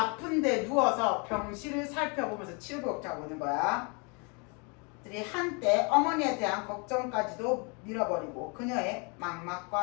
누워서 병실을 살펴보면서 치료비 걱정하고 있는 거야. 들이 한때 어머니에 대한 걱정까지도 밀어버리고 그녀의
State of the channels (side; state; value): right; quieter; 33.3 dB